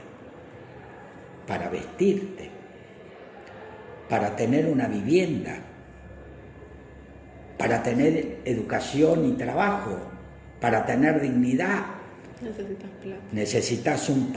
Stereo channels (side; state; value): both; identical; correlation 1.00